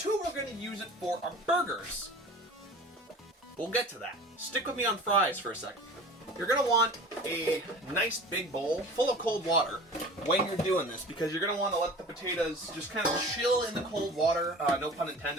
we're gonna use it for our burgers. We'll get to that. Stick with me on fries for a second. You're gonna want a nice big bowl full of cold water when you're doing this, because you're gonna wanna let the potatoes just kind of chill in the cold water. No pun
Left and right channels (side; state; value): both; normal; correlation 0.40